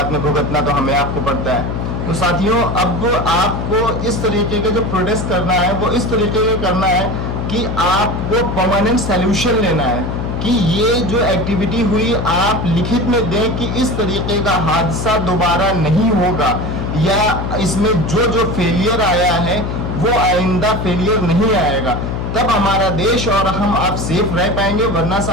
में भुगतना तो हमें आपको पड़ता है। तो साथियों, अब आपको इस तरीके के जो प्रोटेस्ट करना है वो इस तरीके के करना है कि आपको परमानेंट सॉल्यूशन लेना है कि ये जो एक्टिविटी हुई आप लिखित में दें कि इस तरीके का हादसा दोबारा नहीं होगा, या इसमें जो जो फेलियर आया है वो आइंदा फेलियर नहीं आएगा, तब हमारा देश और हम आप सेफ रह पाएंगे। वरना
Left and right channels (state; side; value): noise; left; hum, 3 dB below the sound